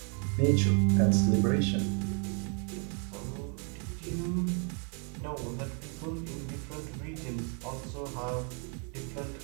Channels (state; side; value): quieter; left; 39.7 dB